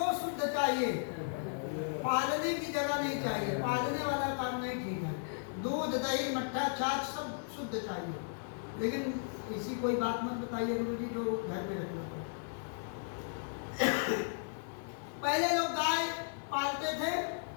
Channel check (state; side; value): silent; right; 54 dB below the other